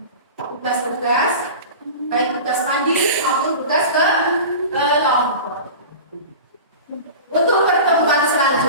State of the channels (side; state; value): both; inverted; correlation -0.33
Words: tugas-tugas baik tugas mandiri maupun tugas kelompok. Untuk pertemuan